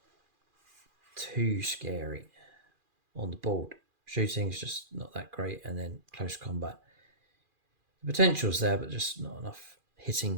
too scary on the board. Shooting is just not that great, and then close combat. The potential's there, but just not enough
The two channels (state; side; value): late; left; 2.4 ms